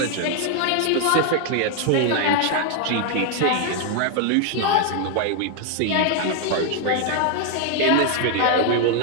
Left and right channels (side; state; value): both; different; correlation 0.01